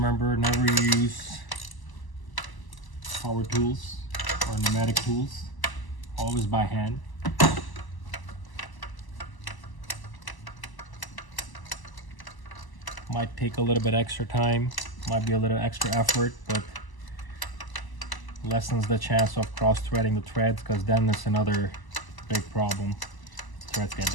never use power tools or pneumatic tools. Always by hand. Might take a little bit extra time. Might be a little extra effort, but lessens the chance of cross-threading the threads, because then it's another big problem. Threads get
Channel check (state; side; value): late; right; 1.0 ms